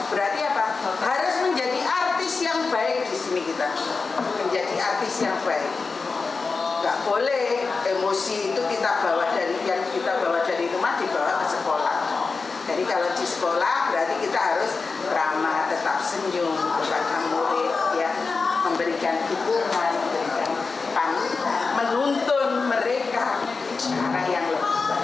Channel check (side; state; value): right; quieter; 4.4 dB